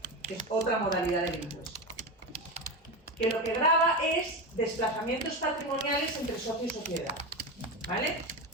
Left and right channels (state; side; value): normal; both; correlation 0.19